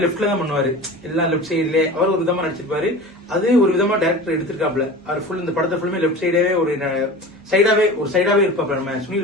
லெப்ட்ல தான் பண்ணுவாரு, எல்லாம் லெப்ட் சைட்ல அவர் ஒரு விதமா நடிச்சிருப்பாரு. அது ஒரு விதமா டைரக்டர் எடுத்திருக்காப்ல. அவர் ஃபுல் இந்த படத்தை ஃபுல்லுமே லெப்ட் சைடாவே ஒரு சைடாவே இருப்பாப்ல. நம்ம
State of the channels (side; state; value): both; normal; correlation 0.35